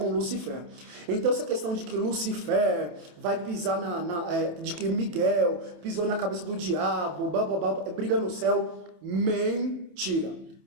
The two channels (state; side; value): late; left; 28 ms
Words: Lucifer. Então essa questão de que Lucifer vai pisar de que Miguel pisou na cabeça do diabo, briga no céu, mentira.